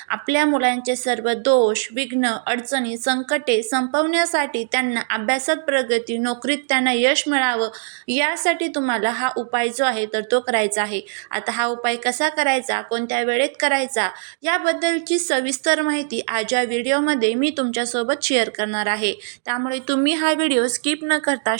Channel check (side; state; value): left; silent; digital silence